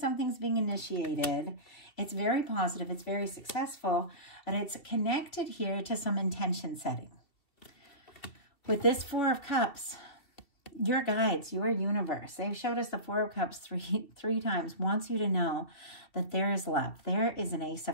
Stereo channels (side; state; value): right; late; 2.9 ms